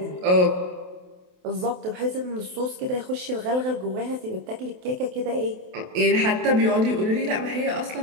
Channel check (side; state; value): left; late; 28 ms